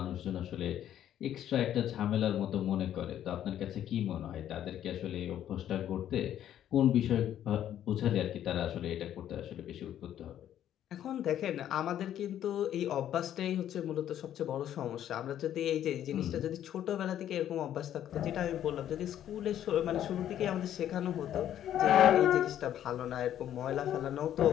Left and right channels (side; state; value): right; quieter; 11.0 dB